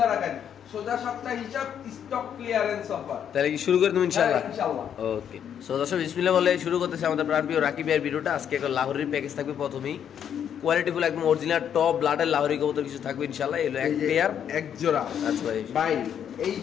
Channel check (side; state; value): right; quieter; 8.9 dB